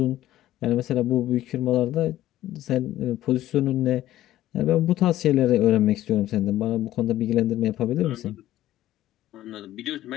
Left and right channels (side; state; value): right; quieter; 14.0 dB